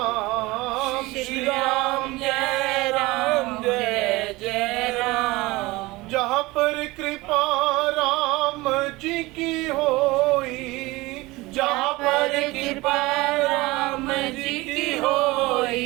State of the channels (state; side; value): quieter; left; 21.2 dB